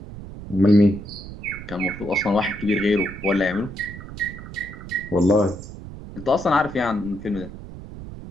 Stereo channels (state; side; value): noise; right; rumble, 12 dB below the sound